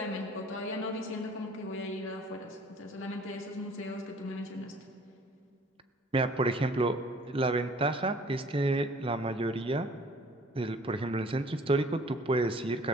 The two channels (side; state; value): both; normal; correlation 0.53